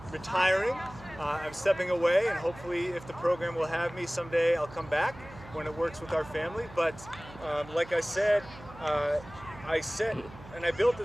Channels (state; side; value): noise; right; hum, 18 dB below the sound